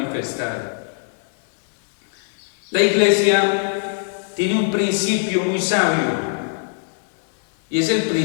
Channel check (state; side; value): silent; right; 65 dB below the other